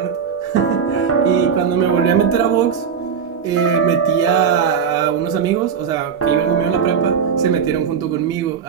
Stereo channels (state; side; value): quieter; left; 7.0 dB